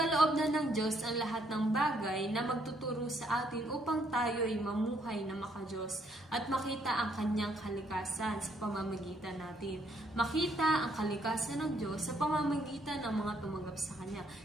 na ng Diyos ang lahat ng bagay na magtuturo sa atin upang tayo ay mamuhay na makadiyos at makita ang kanyang kalikasan sa pamamagitan natin. Makita ang kalikasan ng Diyos sa pamamagitan ng mga tumanggap sa Kanya,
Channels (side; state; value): both; normal; correlation 0.70